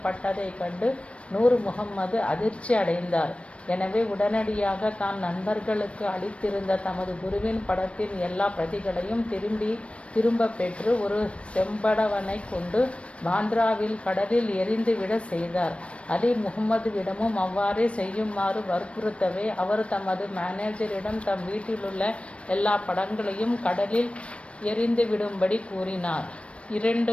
கண்டு நூர் முகம்மது அதிர்ச்சி அடைந்தார். எனவே உடனடியாக தான் நண்பர்களுக்கு அளித்திருந்த தமது குருவின் படத்தின் எல்லா பிரதிகளையும் திரும்ப பெற்று ஒரு செம்படவனை கொண்டு பாந்த்ராவில் கடலில் எரிந்துவிட செய்தார். அலி முகம்மதுவிடமும் அவ்வாறே செய்யுமாறு வற்புறுத்தவே அவர் தமது மேனேஜரிடம் தம் வீட்டிலுள்ள எல்லா படங்களையும் கடலில் எரிந்துவிடும்படி கூறினார்.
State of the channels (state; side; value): late; right; 0.061 ms